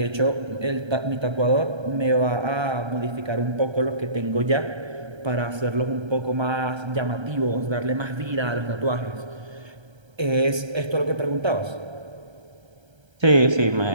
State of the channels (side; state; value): left; late; 1.3 ms